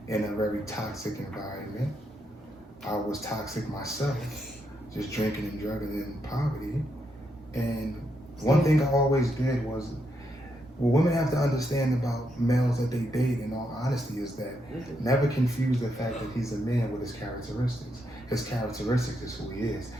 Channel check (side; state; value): both; normal; correlation 0.80